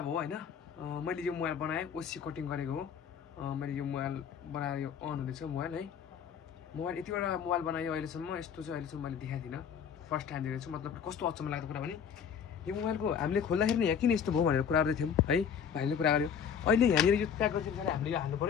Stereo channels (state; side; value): quieter; right; 7.5 dB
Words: हो हैन। मैले यो मोबाइल बनाएँ, ओसी कटिङ गरेको हो। मैले यो मोबाइल बनाएर यो अन हुँदैछ मोबाइल है। मोबाइल यतिवटा मोबाइल बनायो अहिलेसम्म, यस्तो चाहिँ अहिलेसम्म मैले देखाइदिन। फर्स्ट टाइम देखेको छु। मतलब कस्तो अचम्म लाग्दो कुरा भने यो मोबाइलको हामीले खोल्दाखेरि नि यहाँ किन यस्तो भयो भनेर कुरा गर्दै थियौँ है। भाइले कुरा गर्यो अहिले यहाँनिर यो प्याक गरेर पछाडि हामीले यो हाल्नु